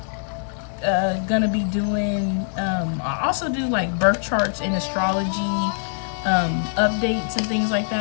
gonna be doing, I also do like birth charts and astrology updates and things like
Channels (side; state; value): right; silent; 63 dB below the other